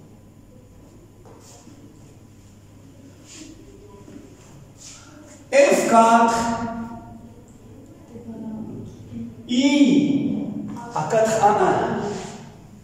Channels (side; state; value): both; identical; correlation 1.00